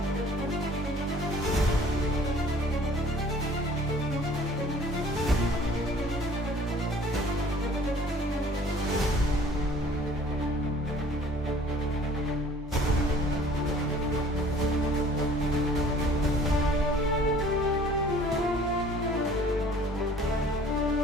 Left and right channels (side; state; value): both; normal; correlation 0.52